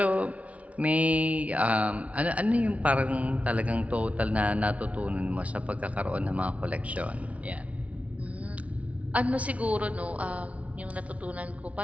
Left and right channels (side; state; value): left; late; 0.066 ms